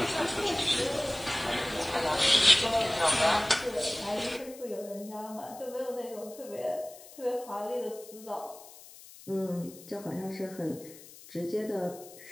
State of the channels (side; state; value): left; noise; hiss, 19 dB below the sound